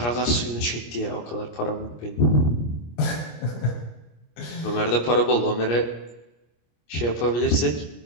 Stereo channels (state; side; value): late; right; 25 ms